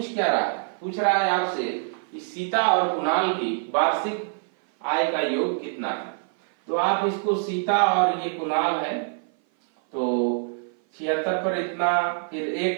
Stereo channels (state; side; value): silent; left; 56 dB below the other